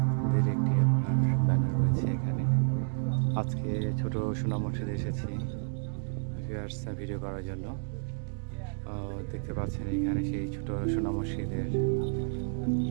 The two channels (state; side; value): silent; left; digital silence